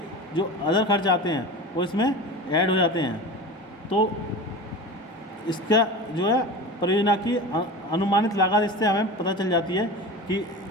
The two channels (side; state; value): both; normal; correlation 0.31